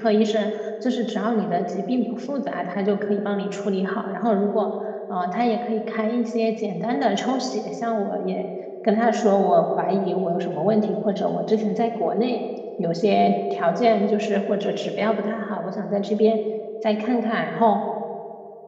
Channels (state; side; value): identical; both; correlation 1.00